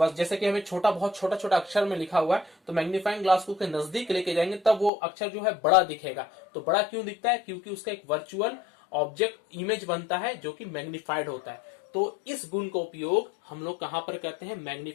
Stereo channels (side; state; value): right; drops out; at 4.9 s